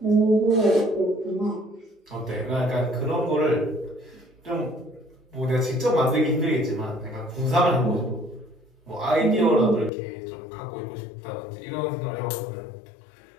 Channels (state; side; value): drops out; right; at 9.9 s